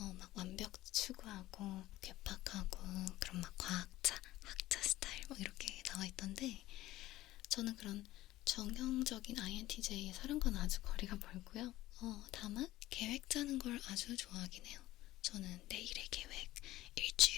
막 완벽 추구하고 괴팍하고 그런 막 과학자, 학자 스타일 막 이렇게 나와 있던데, 저는 그런 정형적인 INTJ의 사람과는 아주 거리가 멀고요. 다만 계획 짜는 걸 아주 좋아하긴 해요. 저는 내일의 계획,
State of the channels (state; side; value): quieter; right; 16.2 dB